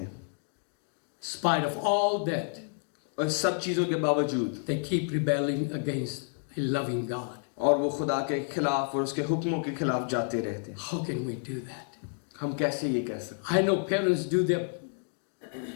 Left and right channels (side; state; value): right; silent; 58 dB below the other